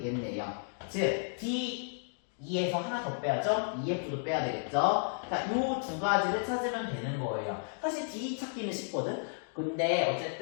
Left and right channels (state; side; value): silent; right; digital silence